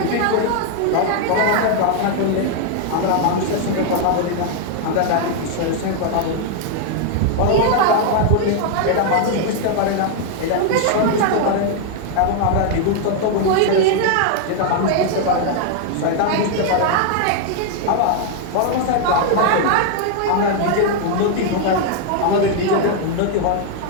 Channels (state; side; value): different; both; correlation 0.00